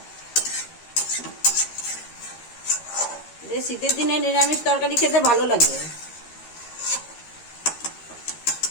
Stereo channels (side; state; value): right; late; 13 ms